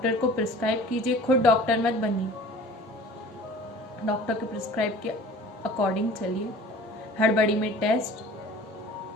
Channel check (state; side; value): normal; both; correlation 0.44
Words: को प्रिस्क्राइब कीजिए। खुद डॉक्टर मत बनिए, डॉक्टर के प्रिस्क्राइब के अकॉर्डिंग चलिए। हड़बड़ी में टेस्ट,